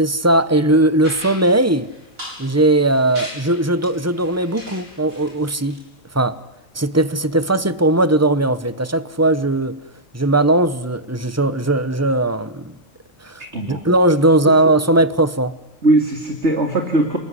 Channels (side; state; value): both; normal; correlation -0.09